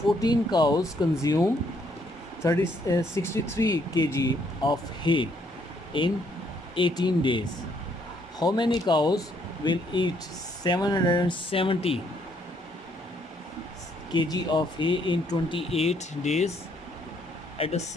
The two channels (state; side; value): normal; both; correlation 0.70